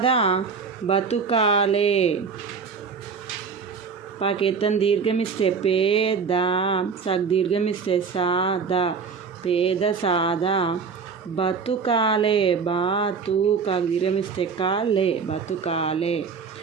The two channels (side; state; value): left; quieter; 5.5 dB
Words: బతుకాలే. పాకేతం దీర్ఘమిస్తే పేద సగ్ దీర్ఘమిస్తే సాదా పేద సాదా బతుకాలే. బాతుకా దీర్ఘమిస్తే కాలే బతుకాలే.